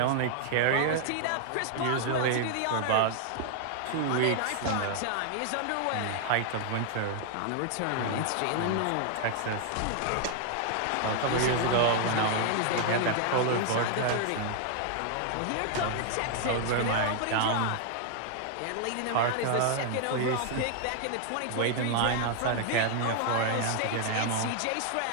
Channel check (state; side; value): different; both; correlation 0.00